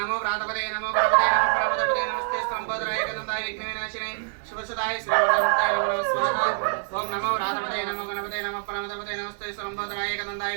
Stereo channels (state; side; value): silent; left; digital silence